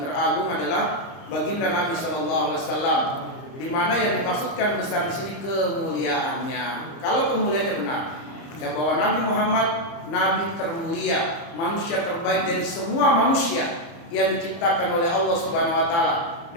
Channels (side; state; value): right; late; 30 ms